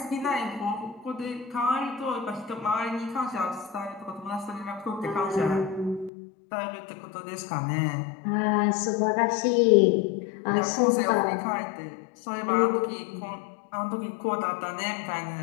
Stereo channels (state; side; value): drops out; right; at 6.1 s